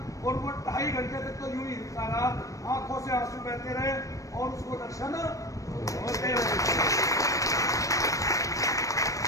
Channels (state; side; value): late; right; 0.16 ms